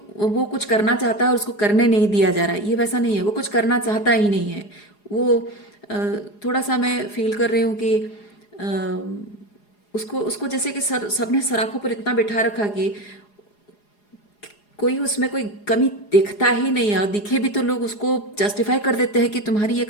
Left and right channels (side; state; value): right; late; 4.8 ms